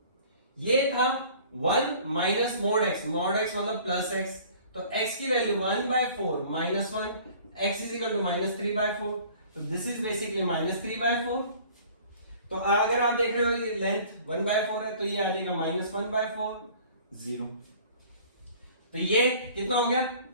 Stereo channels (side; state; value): both; inverted; correlation -0.49